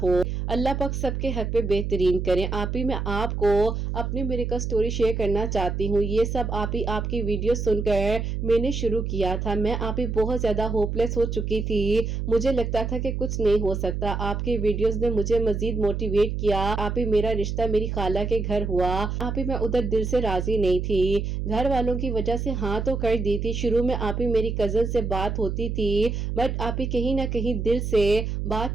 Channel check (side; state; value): right; noise; hum, 3 dB below the sound